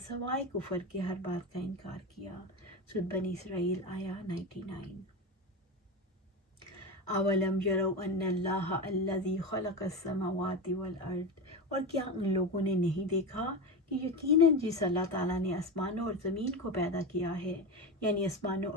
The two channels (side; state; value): both; normal; correlation 0.20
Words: کفر کے ہر بات کا انکار کیا۔ سورۃ بنی اسرائیل آیا 99۔ اولم یروا ان اللہ الذی خلق السماوات والارض، اور کیا ان لوگوں نے نہیں دیکھا کہ یقیناً جس اللہ تعالیٰ نے آسمانوں اور زمین کو پیدا کیا ہے، یعنی آسمانوں